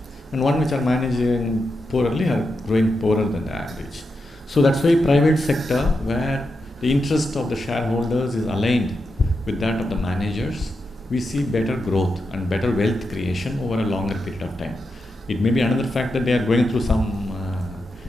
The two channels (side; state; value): both; normal; correlation 0.87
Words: and one which are managing poorly are growing poorer than the average. So that's why private sector, where the interest of the shareholders is aligned with that of the managers, we see better growth and better wealth creation over a longer period of time. It may be another fact that they are going through some